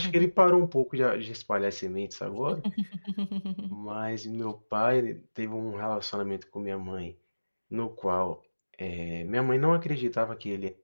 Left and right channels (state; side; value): inverted; both; correlation -1.00